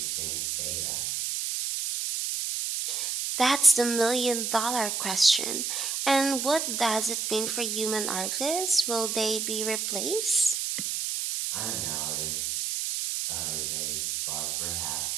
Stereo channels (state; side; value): noise; right; hiss, 1 dB below the sound